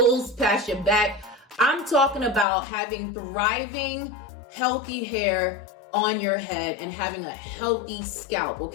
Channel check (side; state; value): right; drops out; at 2.5 s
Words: past your back. I'm talking about having thriving, healthy hair on your head and having a healthy scalp.